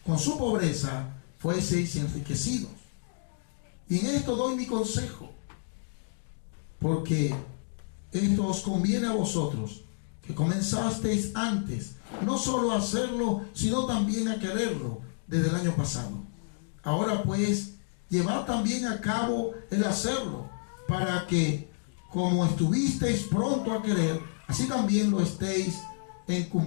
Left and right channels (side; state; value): right; silent; digital silence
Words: con su pobreza fueseis enriquecidos. Y en esto doy mi consejo, porque esto os conviene a vosotros, que comenzasteis antes, no solo a hacerlo, sino también a quererlo desde el año pasado. Ahora pues, llevad también a cabo el hacerlo, para que, como estuvisteis pronto a querer, así también lo estéis en